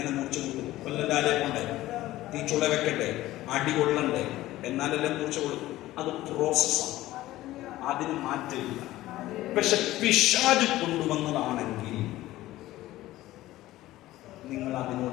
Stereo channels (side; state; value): right; quieter; 16.1 dB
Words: മൂർച്ച കൊടുക്കും? കൊല്ലലാലെ കൊണ്ടേ, തീച്ചുള വെക്കട്ടെ, അടി കൊള്ളണ്ടേ, എന്നാലെല്ലാം മൂർച്ച കൊടുക്കും. അത് പ്രോസസ്സാണ്, അതിന് മാറ്റമില്ല. പക്ഷെ പിശാച് കൊണ്ടുവന്നതാണെങ്കിൽ നിങ്ങൾ അതിനോട്